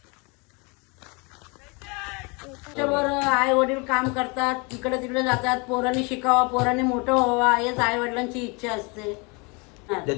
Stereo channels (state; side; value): quieter; right; 30.1 dB